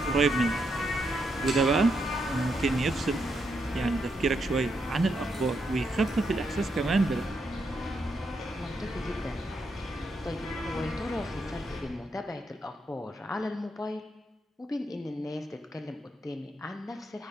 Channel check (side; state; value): both; normal; correlation 0.80